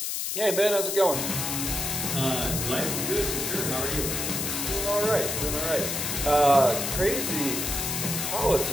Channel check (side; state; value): left; noise; hiss, 2 dB below the sound